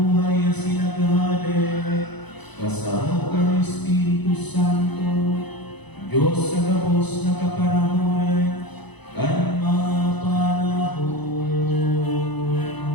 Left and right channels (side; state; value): right; late; 0.99 ms